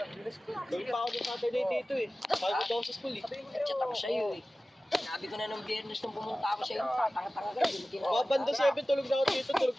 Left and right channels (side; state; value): both; normal; correlation 0.96